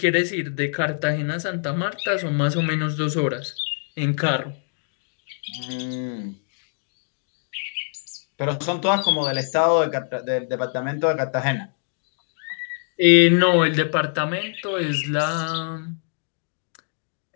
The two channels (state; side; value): silent; right; 63 dB below the other